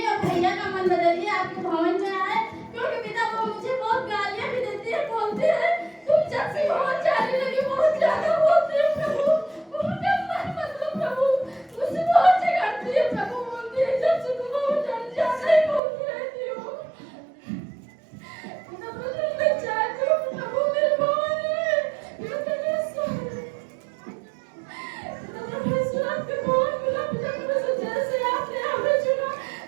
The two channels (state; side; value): drops out; left; at 15.8 s